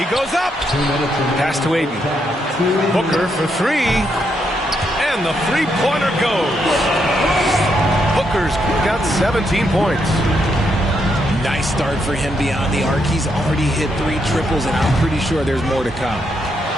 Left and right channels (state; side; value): normal; both; correlation 0.79